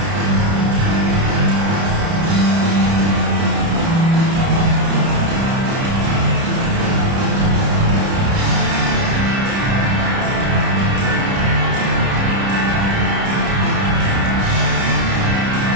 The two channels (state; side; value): late; left; 30 ms